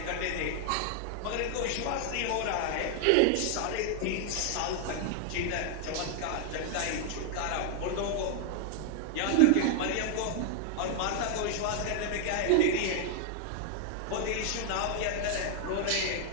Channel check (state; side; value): different; both; correlation 0.00